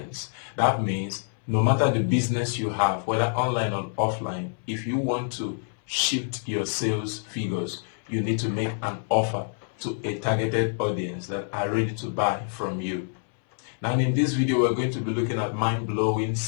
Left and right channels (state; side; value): silent; right; 60 dB below the other